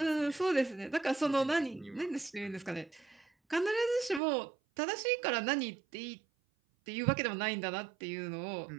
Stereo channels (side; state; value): left; drops out; at 4.2 s